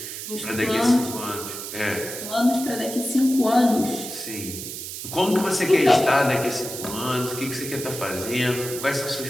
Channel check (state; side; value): noise; right; hiss, 8 dB below the sound